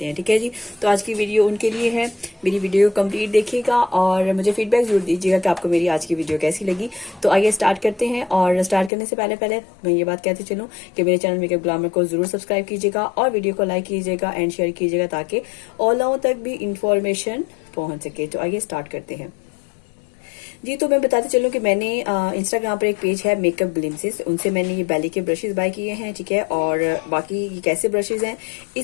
हैं। ठीक है जी, तो आज की वीडियो उनके लिए है। मेरी वीडियो कंप्लीट देखिएगा और मुझे फीडबैक जरूर दीजिएगा कि आपको मेरी आज की वीडियो कैसी लगी। तो आइए स्टार्ट करते हैं। और स्टार्ट करने से पहले मैं ये बात कहते चलूँ कि मेरे चैनल मेकअप ग्लैमर को जरूर सब्सक्राइब कीजिएगा और वीडियो को लाइक कीजिएगा एंड शेयर कीजिएगा ताकि और लोगों तक भी इंफॉर्मेशन पहुंच सके। तो आइए स्टार्ट करते हैं जी। तो मैं बताते चलूँ कि मैंने इंस्टाग्राम पर एक पेज है मेकअप ग्लिम्सेस, उनसे मैंने ये बैली के ब्रशेस बाय किए हैं। ठीक है, और बाकी ये कैसे ब्रशेस हैं,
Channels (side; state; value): right; drops out; at 8.9 s